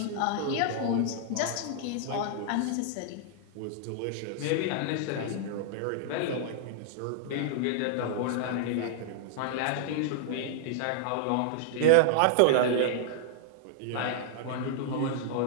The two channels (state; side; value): different; both; correlation -0.01